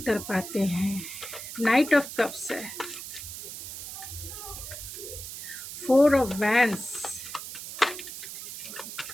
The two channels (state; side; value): noise; right; hiss, 9 dB below the sound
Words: हैं। नाइट ऑफ कप्स है, फोर ऑफ वैंस,